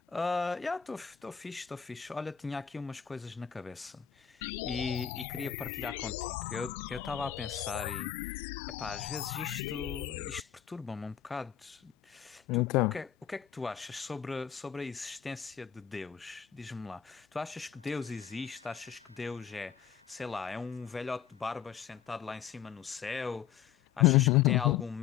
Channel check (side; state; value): right; quieter; 9.2 dB